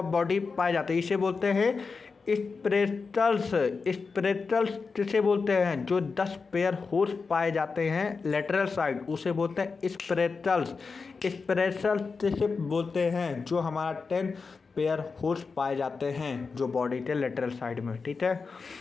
बॉडी पाए जाते हैं इसे बोलते हैं स्प्रेटल्स। स्प्रेटल्स किसे बोलते हैं? जो 10 पेयर होर्स पाए जाते हैं लेटरल साइड, उसे बोलते हैं स्प्रेटल्स। स्प्रेटल्स किसे बोलते हैं? जो हमारा 10 पेयर होर्स पाए जाते हैं जो बॉडी के लेटरल साइड में, ठीक है।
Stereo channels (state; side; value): quieter; right; 4.7 dB